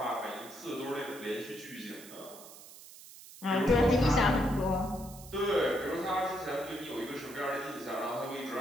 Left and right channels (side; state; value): right; noise; hiss, 17 dB below the sound